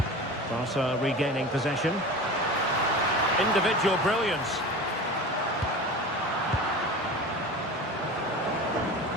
Barca regaining possession. Individual brilliance.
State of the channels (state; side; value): normal; both; correlation 0.33